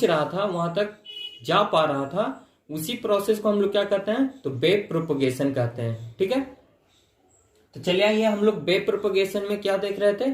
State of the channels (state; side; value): identical; both; correlation 1.00